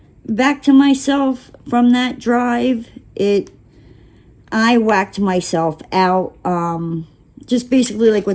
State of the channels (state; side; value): identical; both; correlation 1.00